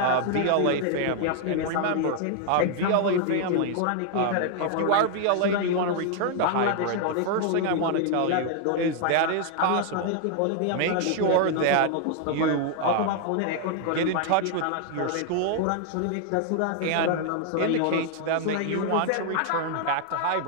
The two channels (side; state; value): both; different; correlation 0.00